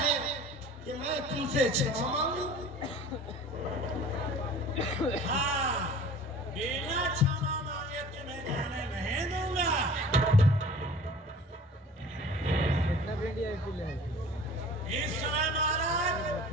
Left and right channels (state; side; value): normal; both; correlation 0.45